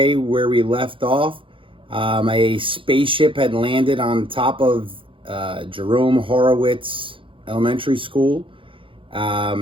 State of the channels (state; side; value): late; left; 0.25 ms